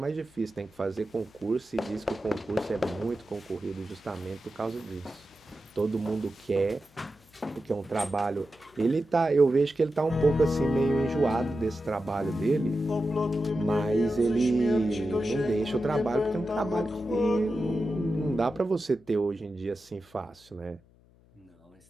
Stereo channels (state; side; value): noise; left; hum, 29 dB below the sound